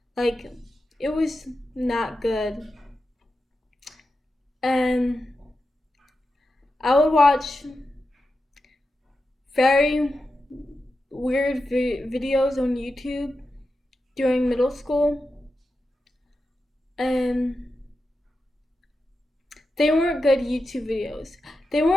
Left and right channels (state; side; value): normal; both; correlation 0.90